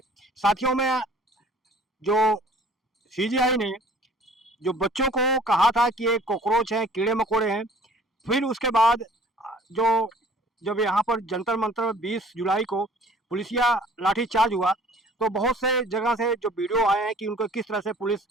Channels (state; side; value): normal; both; correlation 0.52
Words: साथियों में जो सीजीआई ने जो बच्चों को कहा था कि ये कॉकरोच हैं, कीड़े मकोड़े हैं, फिर उसके बाद जो जब यहाँ पर जंतर मंतर 20 जुलाई को पुलिसिया लाठीचार्ज हुआ तो बहुत से जगह से जो वीडियो आए हैं कि उनको किस तरह से पुलिस